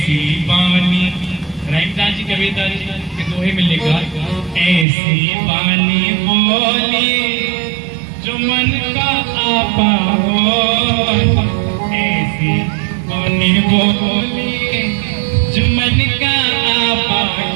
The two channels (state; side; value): drops out; left; at 4.9 s